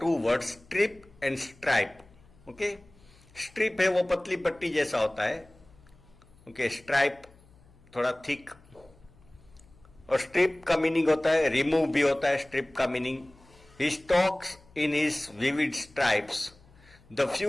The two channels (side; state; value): left; noise; hum, 27 dB below the sound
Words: words, strip and stripe. Strip है वो पतली पट्टी जैसा होता है. Stripe थोड़ा thick. और strip का मीनिंग होता है रिमूव भी होता है. स्ट्रिप का meaning he stalks in his vivid stripes the